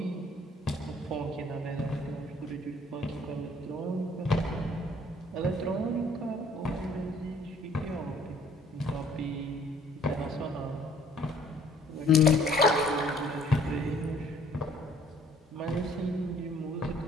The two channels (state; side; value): normal; both; correlation 0.58